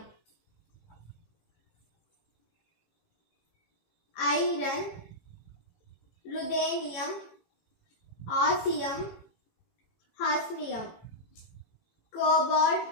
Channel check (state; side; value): late; right; 18 ms